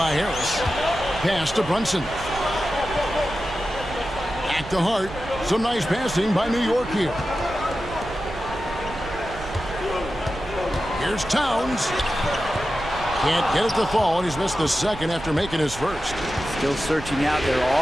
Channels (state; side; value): noise; right; rumble, 13 dB below the sound